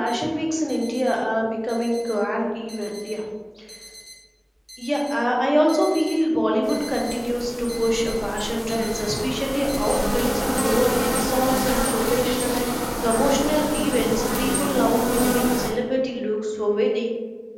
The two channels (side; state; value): both; identical; correlation 1.00